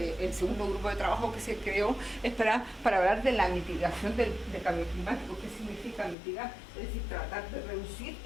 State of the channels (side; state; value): right; drops out; at 6.2 s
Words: segundo grupo de trabajo que se creó es para hablar de la mitigación del cambio climático. ¿Qué significa mitigar? Es decir, tratar de reducir